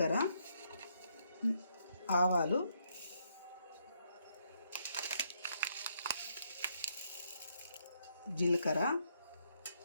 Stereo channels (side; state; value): both; inverted; correlation -0.74